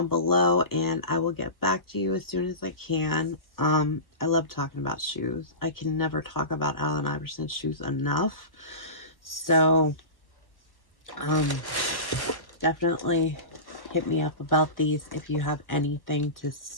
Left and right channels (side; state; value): right; late; 1.2 ms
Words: below and I will get back to you as soon as I can. I love talking about shoes. I can never talk about Allen Iverson's shoes enough. So definitely hit me up about these if you have anything to